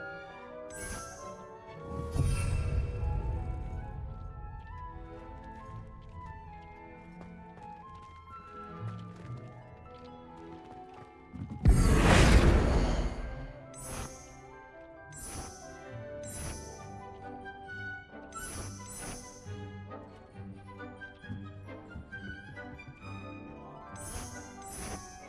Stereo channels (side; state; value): both; identical; correlation 1.00